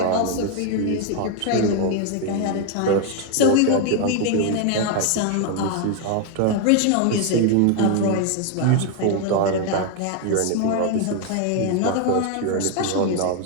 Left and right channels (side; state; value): both; different; correlation 0.01